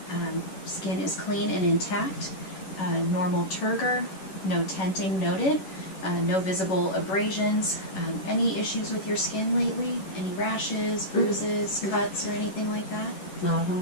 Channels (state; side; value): late; right; 11 ms